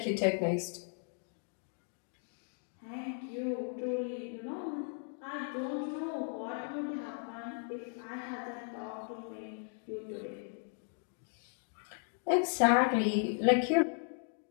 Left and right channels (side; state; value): right; silent; 54 dB below the other